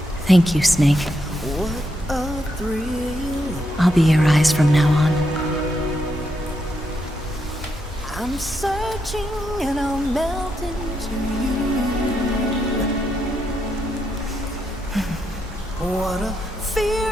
Thank you, Snake. What a thrill. I'll be your eyes from now on. I'm searching and I'll melt into you. What a fear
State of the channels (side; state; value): both; normal; correlation 0.81